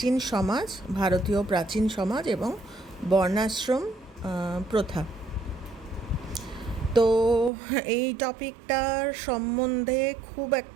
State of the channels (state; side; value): drops out; left; at 7.5 s